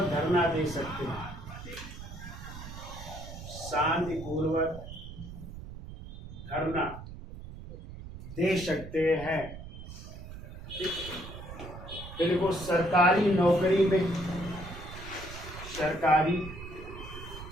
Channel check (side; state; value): right; noise; rumble, 12 dB below the sound